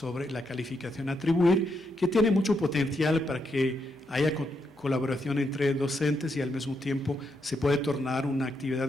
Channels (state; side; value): normal; both; correlation 0.80